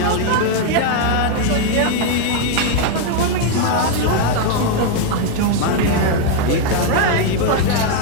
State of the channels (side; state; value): both; different; correlation 0.00